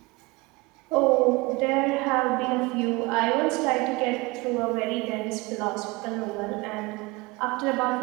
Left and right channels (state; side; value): quieter; left; 24.1 dB